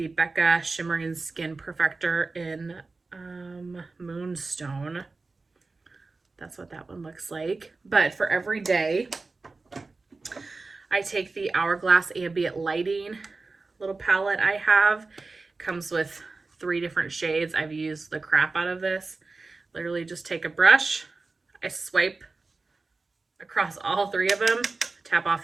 Becca Shimmering Skin Perfector in Moonstone. That's what that one looks like. But for every day, I take the Hourglass Ambient Lighting little palette I have. Comes with 3 different shades. I've used the crap out of this. Literally just take a brush, I swipe across all 3 of them, tap off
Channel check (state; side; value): quieter; left; 3.8 dB